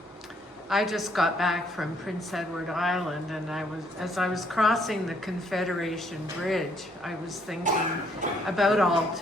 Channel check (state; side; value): normal; both; correlation 0.68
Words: I just got back from Prince Edward Island, and as I was crossing the Confederation Bridge, I was thinking about